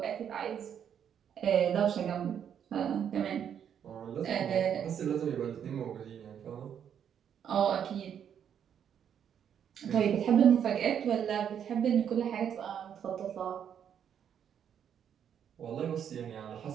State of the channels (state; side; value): quieter; left; 8.6 dB